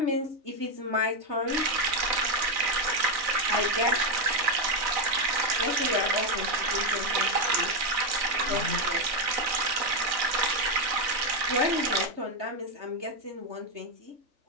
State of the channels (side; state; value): left; late; 3.4 ms